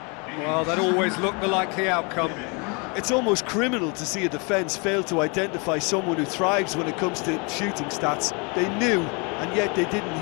Well, that always looked the likely outcome. It's almost criminal to see a defence fail to identify someone who thrives when it comes to shooting stats. They knew, and yet they didn't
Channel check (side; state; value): right; quieter; 32.0 dB